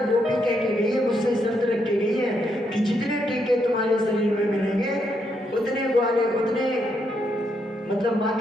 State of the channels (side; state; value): both; normal; correlation 0.78